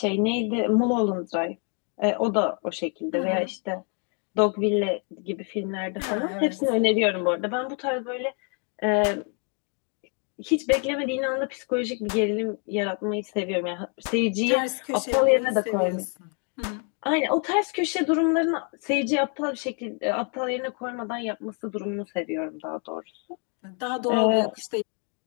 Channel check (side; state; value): right; quieter; 37.6 dB